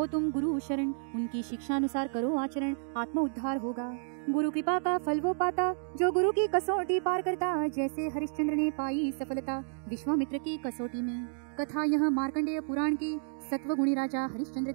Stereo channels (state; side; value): silent; left; digital silence